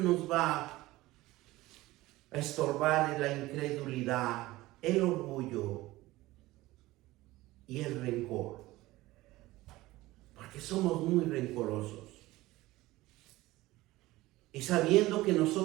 va a estorbar es la incredulidad, el orgullo y el rencor. Porque somos muy rencorosos. Y sabiendo que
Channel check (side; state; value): left; quieter; 18.4 dB